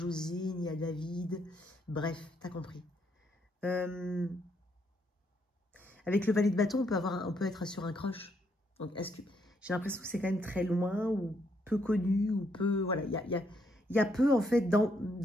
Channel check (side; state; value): both; normal; correlation 0.74